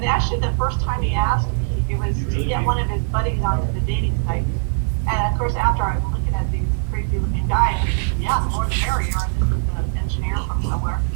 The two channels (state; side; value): silent; left; digital silence